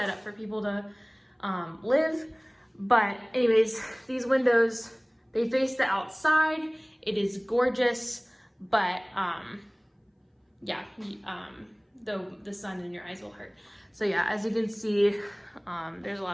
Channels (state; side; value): identical; both; correlation 1.00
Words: up for people to live. But anyways, these windows, they face the outside. It is gorgeous, but yeah, the sun in your eyes will hurt. So yeah, as you can see, there's a